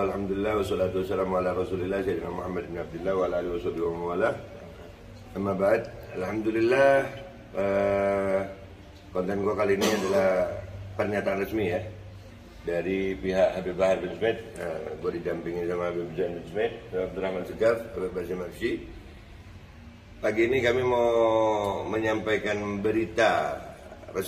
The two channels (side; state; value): both; identical; correlation 1.00